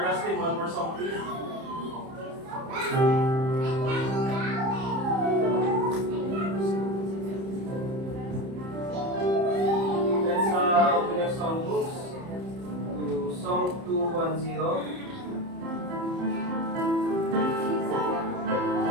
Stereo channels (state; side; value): late; left; 30 ms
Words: Dustin, one more song please. Let's open your songbooks to Song 210.